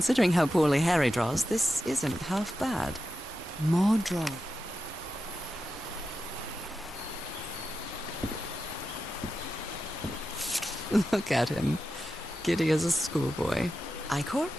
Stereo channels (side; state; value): both; normal; correlation 0.90